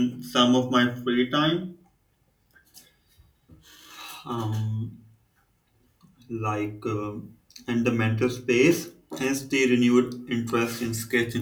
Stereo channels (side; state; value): both; identical; correlation 1.00